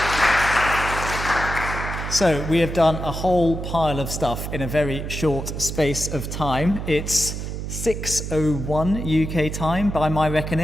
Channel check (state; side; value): noise; right; hum, 6 dB below the sound